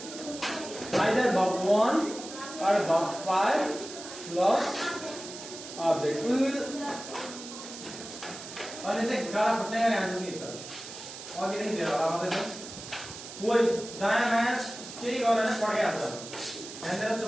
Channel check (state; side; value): noise; right; hiss, 12 dB below the sound